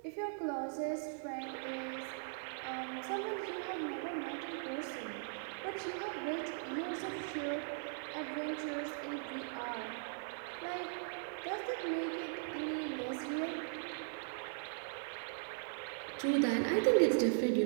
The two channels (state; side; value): silent; left; digital silence